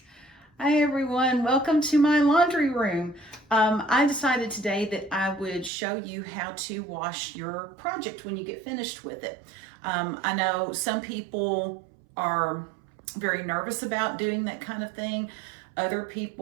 Hi everyone, welcome to my laundry room. I decided today that I would show you how to wash your project when you get finished with it. I know some people are very nervous about doing that kind of thing. Other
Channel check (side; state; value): left; drops out; at 5.7 s